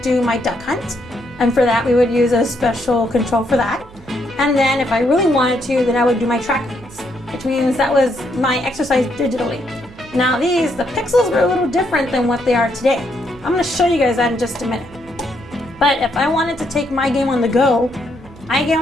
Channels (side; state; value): right; noise; hum, 23 dB below the sound